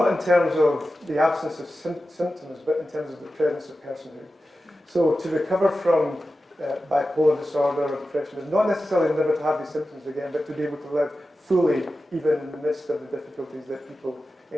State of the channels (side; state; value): both; normal; correlation 0.93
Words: in terms of the absence of symptoms, but in terms of the presence of personhood. So to recover from bipolar disorder or depression is not necessarily never to have these symptoms again, but to be able to live fully, even in the midst of the difficulties that people